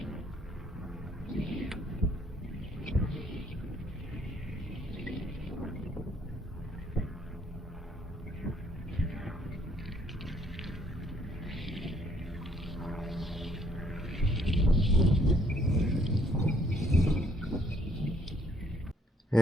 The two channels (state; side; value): normal; both; correlation 0.65